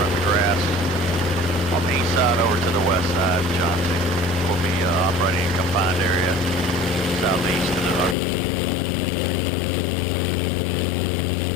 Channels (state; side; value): drops out; right; at 8.2 s